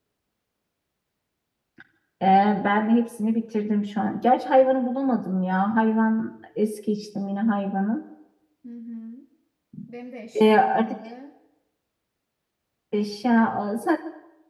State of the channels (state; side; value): identical; both; correlation 1.00